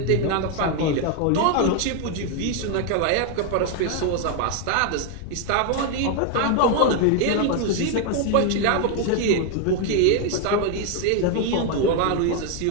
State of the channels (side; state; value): both; different; correlation 0.01